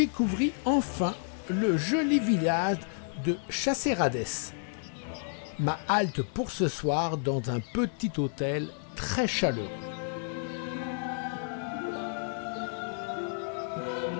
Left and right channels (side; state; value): right; silent; 57 dB below the other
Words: enfin le joli village de Chasserades. Ma halte pour ce soir dans un petit hôtel très chaleureux.